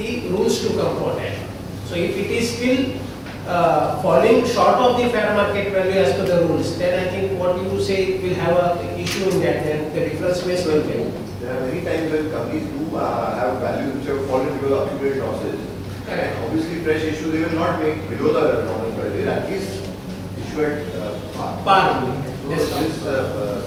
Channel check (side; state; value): both; identical; correlation 1.00